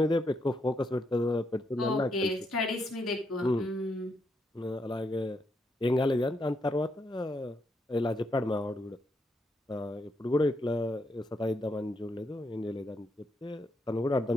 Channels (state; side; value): normal; both; correlation 0.79